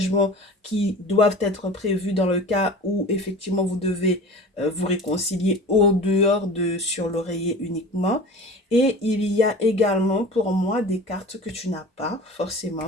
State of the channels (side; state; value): both; normal; correlation 0.38